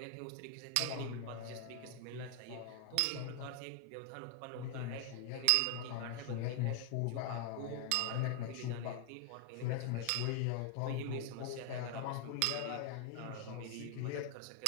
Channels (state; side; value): different; both; correlation 0.00